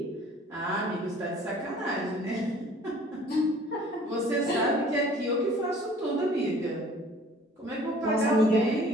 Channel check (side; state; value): both; normal; correlation 0.51